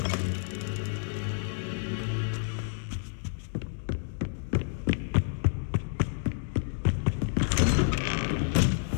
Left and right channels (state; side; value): silent; right; digital silence